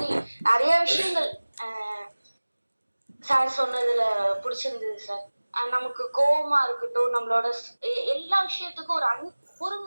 நிறைய விஷயங்கள் சார் சொன்னதுல பிடிச்சிருந்தது சார். நமக்கு கோவமா இருக்கட்டும், நம்மளோட எல்லா விஷயத்துக்கும்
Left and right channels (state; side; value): inverted; both; correlation -1.00